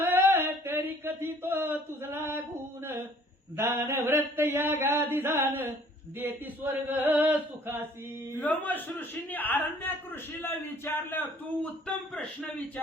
तरी कथितो तुझला गुण दान व्रत या गादी दान देती स्वर्ग सुखासी. लोमश ऋषींनी आरण्याक ऋषीला विचारलं, तू उत्तम प्रश्न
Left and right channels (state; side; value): normal; both; correlation 0.56